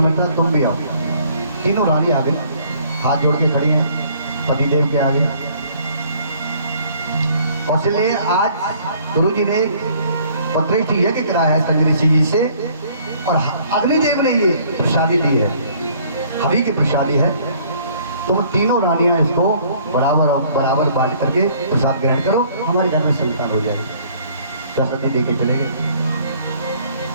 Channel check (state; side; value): inverted; both; correlation -0.59